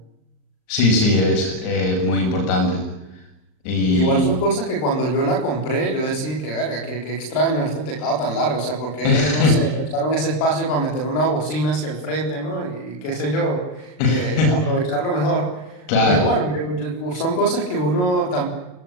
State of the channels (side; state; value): right; late; 39 ms